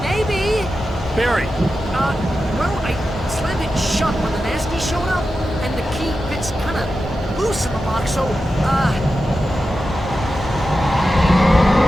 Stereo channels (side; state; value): both; normal; correlation 0.91